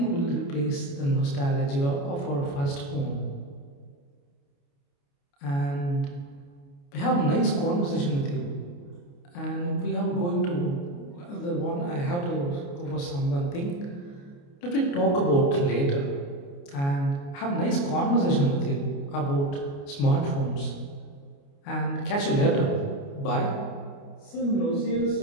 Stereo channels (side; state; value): right; late; 29 ms